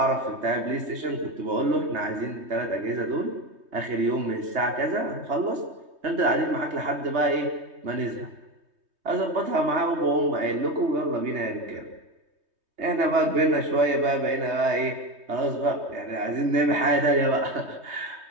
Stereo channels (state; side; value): late; left; 3.2 ms